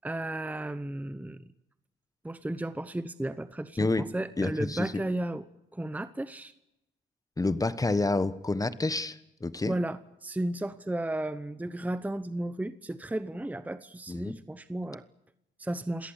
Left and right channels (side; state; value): both; normal; correlation 0.88